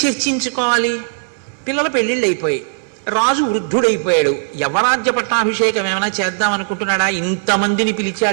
చర్చించుకోవాలి? పిల్లల పెళ్ళిళ్ళు అయిపోయాయి, రాజు వృద్ధుడైపోయాడు, యవరాజ్య పట్టాభిషేకం ఏమైనా చేద్దాం అనుకుంటున్నాడా? ఇంతమందిని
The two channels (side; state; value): left; silent; digital silence